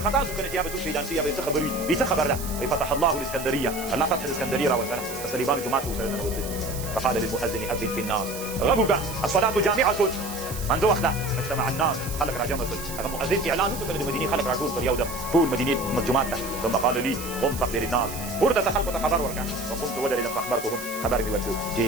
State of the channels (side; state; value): right; noise; hiss, 10 dB below the sound